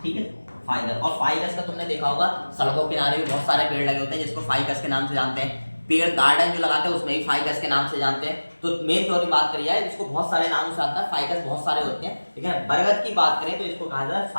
ठीक है, फाइकस। और फाइकस का तुमने देखा होगा सड़कों के किनारे भी बहुत सारे पेड़ लगे होते हैं जिसको फाइकस के नाम से जानते हैं। पेड़ गार्डन जो लगाते हैं उसमें भी फाइकस के नाम से जानते हैं। तो मेन तौर पर बात करी जाए इसको बहुत सारे नामों से आता है, फाइकस बहुत सारे होते हैं, ठीक है। बरगद की बात करें तो इसको कहा जाता है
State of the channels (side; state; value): both; inverted; correlation -1.00